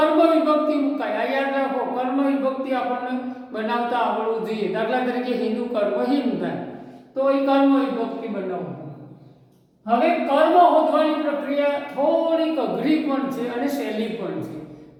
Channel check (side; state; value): both; identical; correlation 1.00